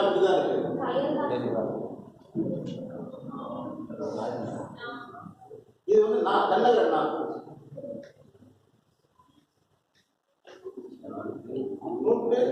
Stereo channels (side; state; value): both; identical; correlation 1.00